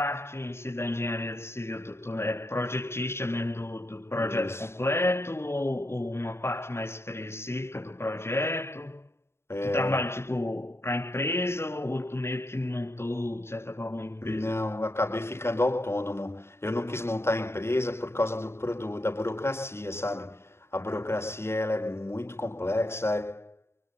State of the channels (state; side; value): late; right; 0.12 ms